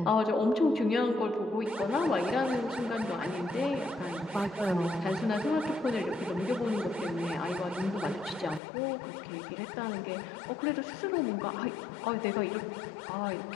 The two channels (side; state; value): right; drops out; at 8.6 s